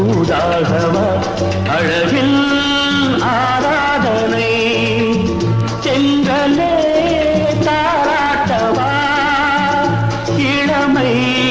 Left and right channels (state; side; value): identical; both; correlation 1.00